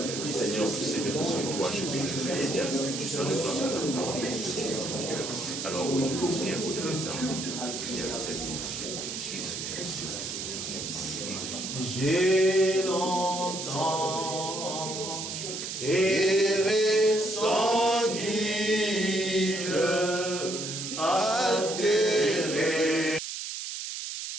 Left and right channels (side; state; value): right; noise; hiss, 6 dB below the sound